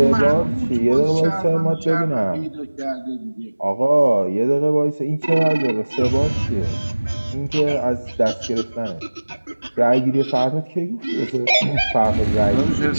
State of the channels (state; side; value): inverted; both; correlation -1.00